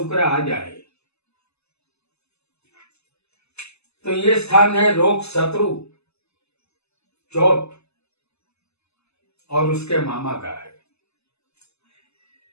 आ जाए तो ये स्थान है रोग, शत्रु, चोट और उसके मामा का है।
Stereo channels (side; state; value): right; late; 0.80 ms